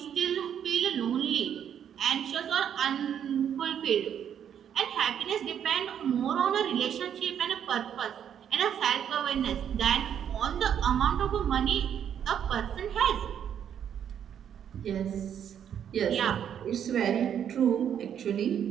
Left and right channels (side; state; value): left; quieter; 9.0 dB